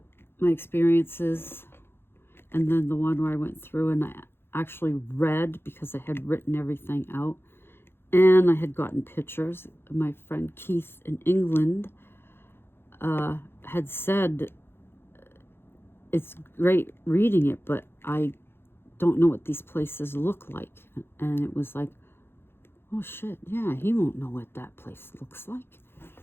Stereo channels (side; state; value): right; late; 0.11 ms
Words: my experiences. And then the one where I went through and I actually read because I had written everything out. And I had gotten pictures. My friend Keith in England had said, it's great reading it, but I don't know what these places look like. And it was like, oh shit, yeah, he won't know what that place looks like.